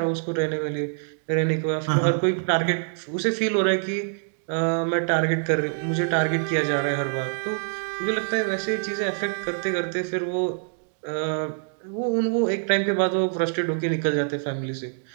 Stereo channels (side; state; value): left; silent; digital silence